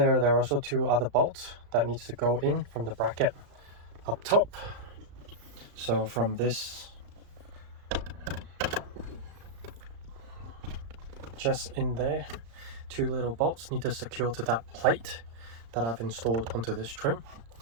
are also 2 other bolts that needs to go in from the bracket up top. So from this, just in there, 2 little bolts need to secure to that plate that I've installed onto this trim.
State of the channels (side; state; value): left; late; 35 ms